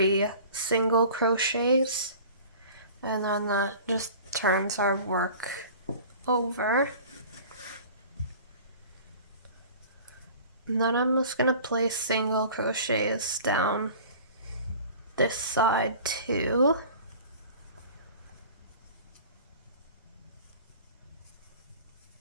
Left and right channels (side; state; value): both; inverted; correlation -0.43